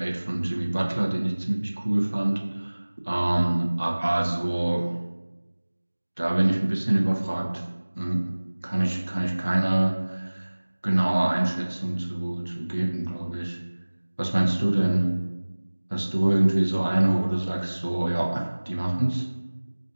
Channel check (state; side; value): inverted; both; correlation -1.00